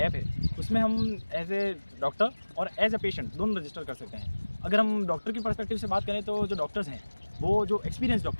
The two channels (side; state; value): both; inverted; correlation -1.00